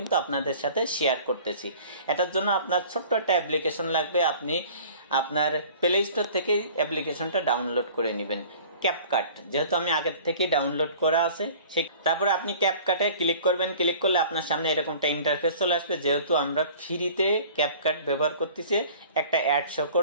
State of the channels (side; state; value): both; inverted; correlation -0.46